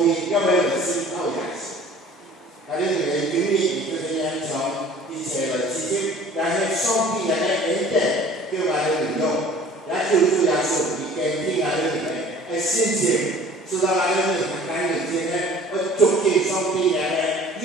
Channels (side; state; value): both; normal; correlation 0.48